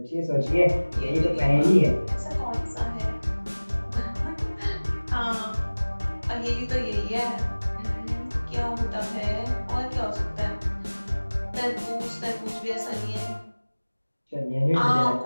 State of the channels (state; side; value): inverted; both; correlation -1.00